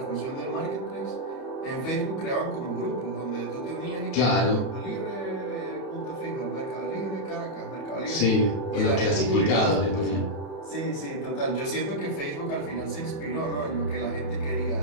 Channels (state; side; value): late; right; 31 ms